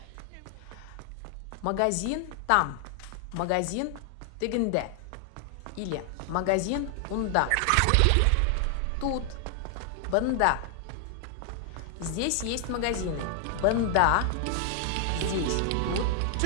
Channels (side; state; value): both; different; correlation 0.00